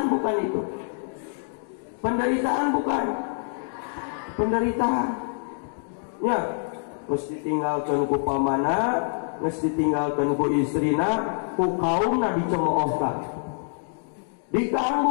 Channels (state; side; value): silent; right; digital silence